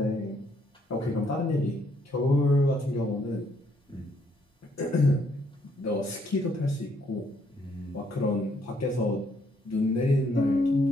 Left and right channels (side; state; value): both; normal; correlation 0.70